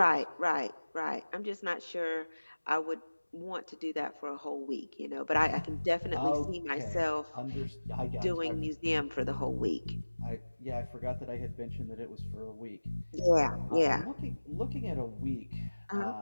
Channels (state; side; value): inverted; both; correlation -1.00